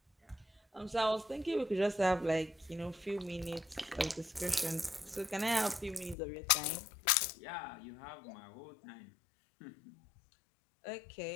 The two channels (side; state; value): right; drops out; at 6.2 s